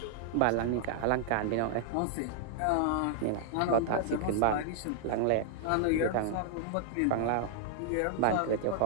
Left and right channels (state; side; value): different; both; correlation -0.01